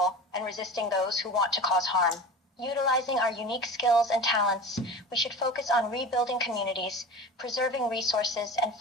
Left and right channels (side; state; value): both; normal; correlation 0.34